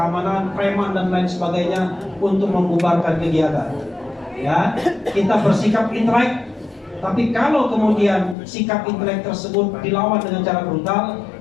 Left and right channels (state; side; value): drops out; right; at 8.3 s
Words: preman dan lain sebagainya untuk membubarkan kegiatan. Ya, kita bersikap intelek, tapi kalau kemudian sikap intelek tersebut dilawan dengan cara brutal,